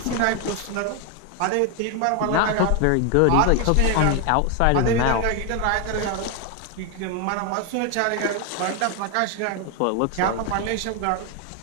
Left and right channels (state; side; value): different; both; correlation 0.01